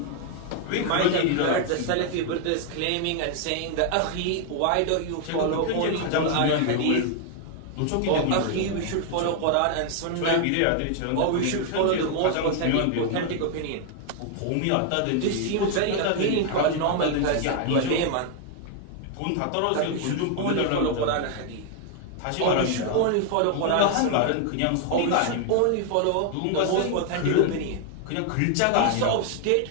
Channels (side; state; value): both; different; correlation 0.00